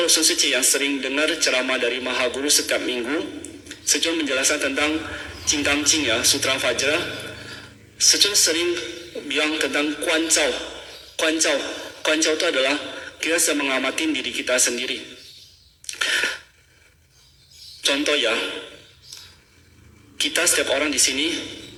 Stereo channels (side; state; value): both; identical; correlation 1.00